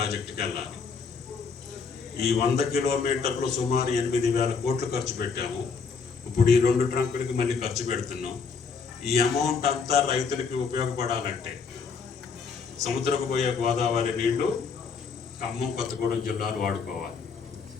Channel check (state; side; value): quieter; right; 5.4 dB